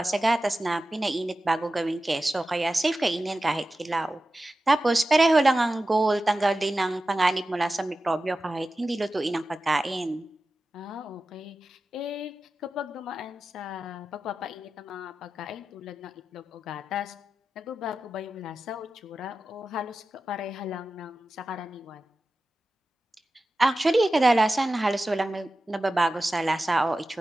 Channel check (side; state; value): both; normal; correlation 0.94